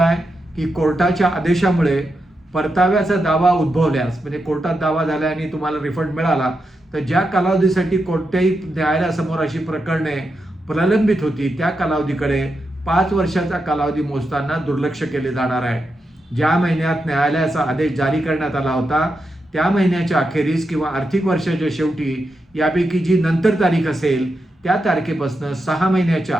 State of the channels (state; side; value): normal; both; correlation 0.86